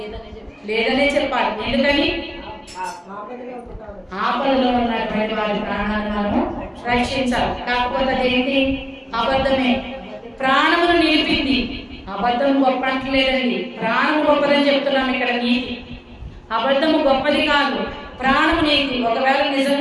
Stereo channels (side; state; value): both; identical; correlation 1.00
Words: లేదనే చెప్పాలి. ఎందుకని? ఆపదలో ఉన్నటువంటి వారి ప్రాణాలను మనము రక్షించాలి. కాకపోతే అదేంటి? అబద్ధమే. ప్రాణమును నిలిపింది. అబద్ధం గొప్ప అంటలేదండి, ప్రాణం గొప్పదని చెప్తున్నాం ఇక్కడ. నీతి, అబద్ధము గొప్పది కాదు, ప్రాణము నీతి. ఒకవేళ